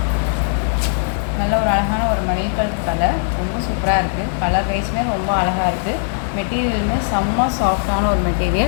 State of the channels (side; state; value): right; silent; 62 dB below the other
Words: நல்ல ஒரு அழகான ஒரு மயில் கழுத்து கலர், ரொம்ப சூப்பராக இருக்குது. கலர் வைஸுமே ரொம்ப அழகாக இருக்குது. மெட்டீரியலுமே செம்ம சாஃப்டான ஒரு